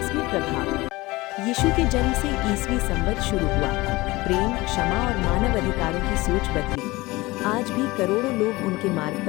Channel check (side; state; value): right; quieter; 20.8 dB